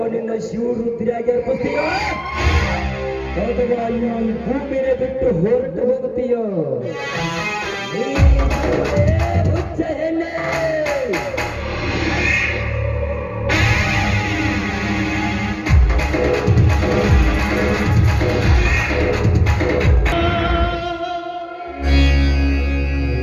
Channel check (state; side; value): identical; both; correlation 1.00